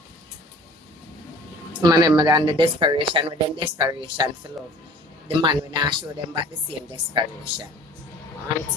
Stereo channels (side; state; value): both; normal; correlation 0.47